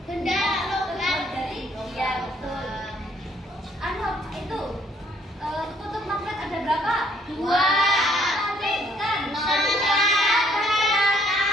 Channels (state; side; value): normal; both; correlation 0.64